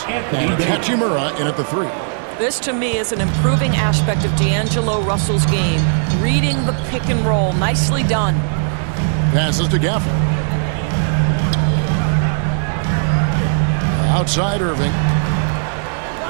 And Hachimura in at the 3. This, to me, is an improving aspect of D'Angelo Russell's game. Reading the pick and roll. Nicely done. Passes to Gafford. Outside Irving.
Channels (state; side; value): silent; left; digital silence